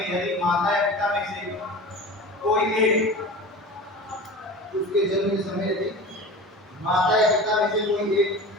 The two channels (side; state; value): both; normal; correlation 0.35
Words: यदि माता या पिता में से कोई एक, उसके जन्म के समय यदि माता या पिता में से कोई एक